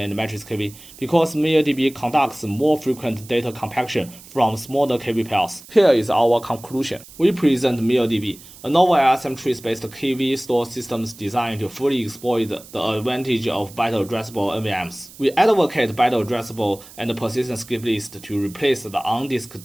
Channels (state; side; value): noise; right; hiss, 20 dB below the sound